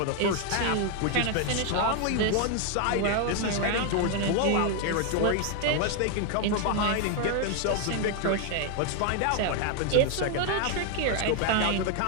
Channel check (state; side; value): different; both; correlation 0.01